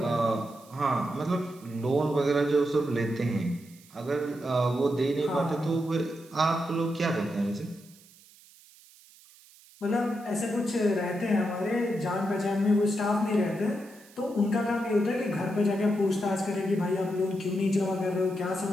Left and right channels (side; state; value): right; noise; hiss, 25 dB below the sound